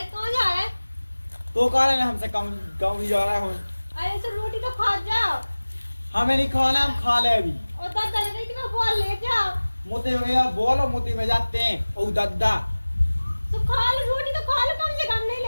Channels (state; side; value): inverted; both; correlation -1.00